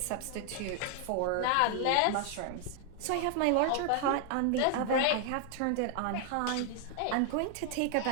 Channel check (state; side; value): different; both; correlation 0.00